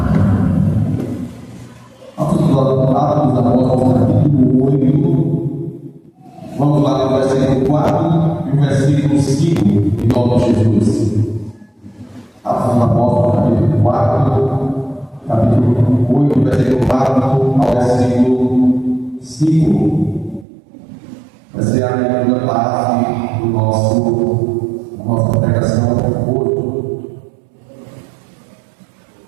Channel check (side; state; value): left; drops out; at 20.5 s